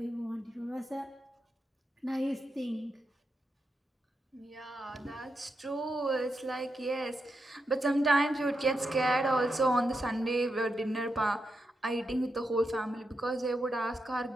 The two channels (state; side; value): normal; both; correlation 0.86